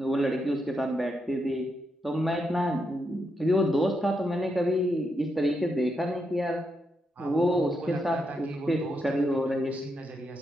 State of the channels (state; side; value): normal; both; correlation 0.82